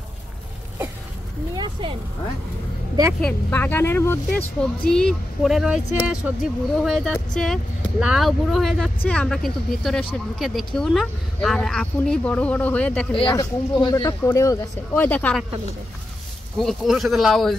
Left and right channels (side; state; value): both; normal; correlation 0.89